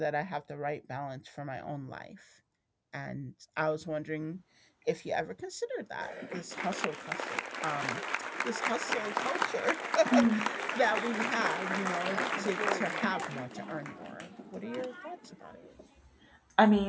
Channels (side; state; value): both; identical; correlation 1.00